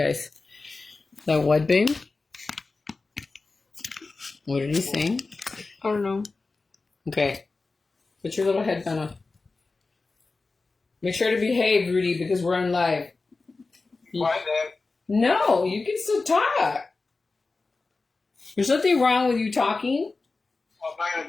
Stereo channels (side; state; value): right; quieter; 3.8 dB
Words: The what, babe? What did he say? I don't know. Okay, put your little headband on. Make sure to behave, Rudy, because we're on live. Why, Dad? No, you can still talk. There's nothing wrong with you talking. I'm not going